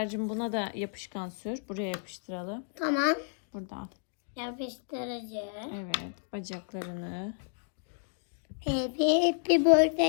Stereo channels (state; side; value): silent; right; digital silence